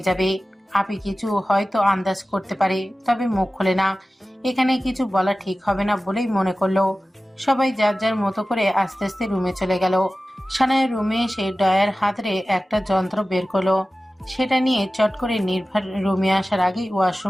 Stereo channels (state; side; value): normal; both; correlation 0.96